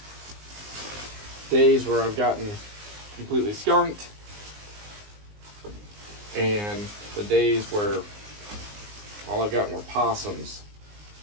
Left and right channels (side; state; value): left; late; 19 ms